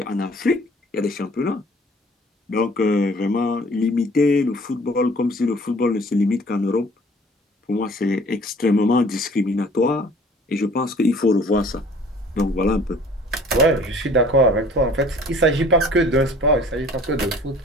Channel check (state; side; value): normal; both; correlation 0.51